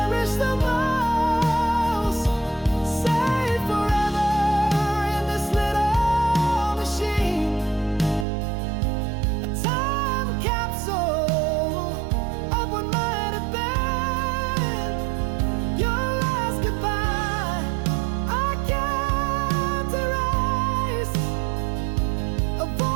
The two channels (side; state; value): left; drops out; at 8.2 s